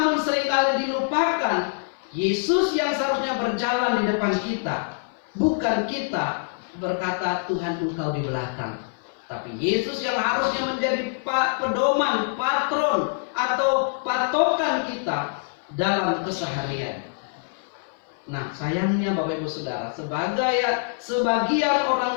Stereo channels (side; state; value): right; silent; 58 dB below the other